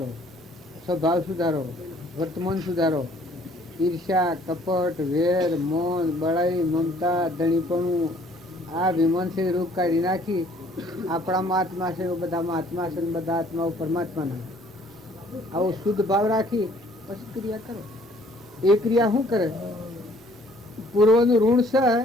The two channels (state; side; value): normal; both; correlation 0.59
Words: સ્વભાવ સુધારો, વર્તમાન સુધારો. ઈર્ષ્યા, કપટ, વેર, મૌન, બળાઈ, મમતા, ધણીપણું આ વિમનથી રૂપ કાઢી નાખી આપણામાં આત્મા છે બધામાં આત્મા છે, બધા આત્માઓ પરમાત્માના. આવો શુદ્ધ ભાવ રાખી પછી ક્રિયા કરો. એ ક્રિયા શું કરે? પૂર્વનું ઋણ છે